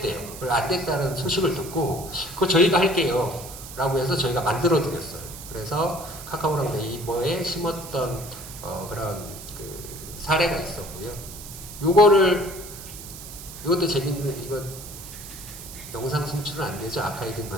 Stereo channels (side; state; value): right; noise; hiss, 13 dB below the sound